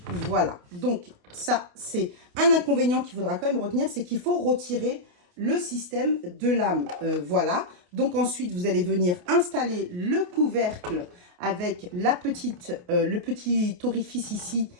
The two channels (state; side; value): late; left; 28 ms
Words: Voilà. Donc, ça, c'est un inconvénient qu'il faudra quand même retenir, c'est qu'il faut retirer le système de lame. Voilà. Donc, ensuite, vous allez venir installer le couvercle avec le petit orifice ici